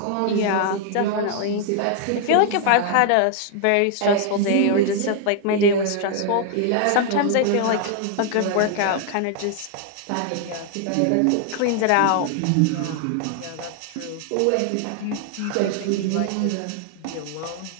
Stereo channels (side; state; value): both; different; correlation 0.00